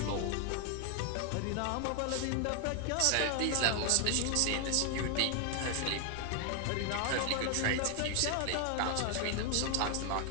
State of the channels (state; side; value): different; both; correlation 0.00